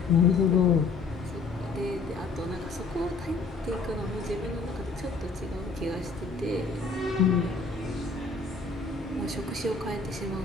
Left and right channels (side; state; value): right; quieter; 4.1 dB